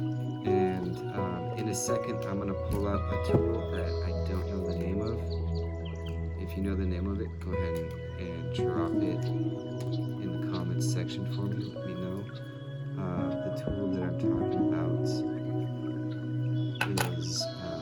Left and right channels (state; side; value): identical; both; correlation 1.00